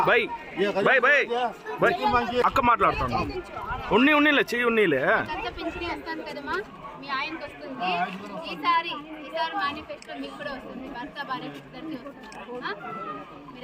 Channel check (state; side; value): identical; both; correlation 1.00